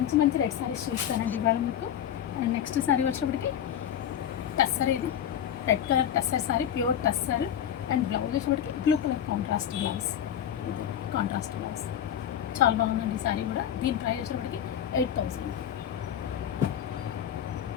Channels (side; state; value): right; quieter; 9.7 dB